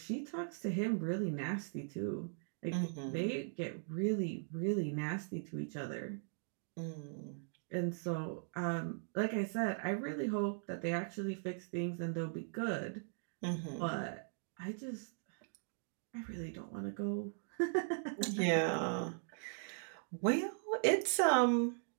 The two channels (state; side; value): silent; left; digital silence